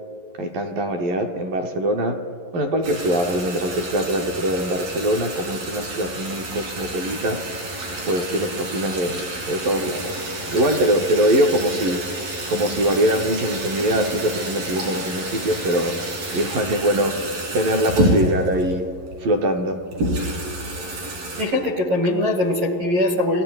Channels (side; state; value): left; late; 11 ms